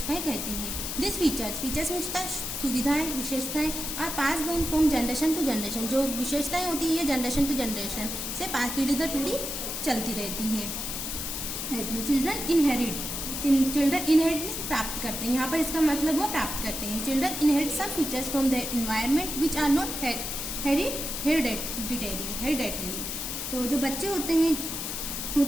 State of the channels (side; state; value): left; noise; hiss, 4 dB below the sound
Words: कहते हैं। दिस फीचर्स में सुविधाएं विशेषताएं are pass down from generation to generation, जो विशेषताएं होती है ये जनरेशन टू जनरेशन से पीढ़ी दर पीढ़ी चलती रहती हैं। चिल्ड्रन इनहेरिट प्राप्त करते हैं, यहाँ पर इसका मतलब वो प्राप्त करते हैं। Children inherit some features from the environment which are not hereditary. तो जो बच्चे होते हैं